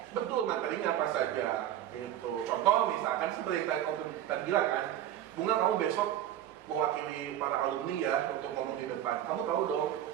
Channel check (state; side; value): quieter; left; 11.8 dB